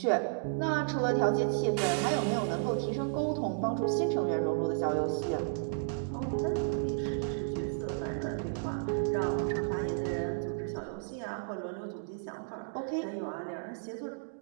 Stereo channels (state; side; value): silent; left; digital silence